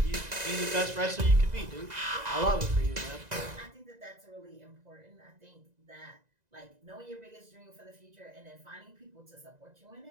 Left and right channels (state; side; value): late; left; 2.0 ms